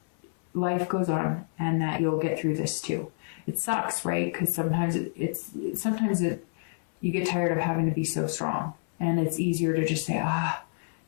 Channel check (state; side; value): silent; right; 59 dB below the other